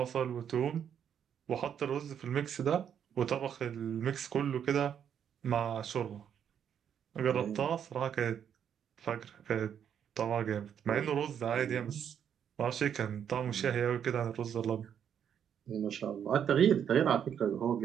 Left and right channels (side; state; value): left; quieter; 8.6 dB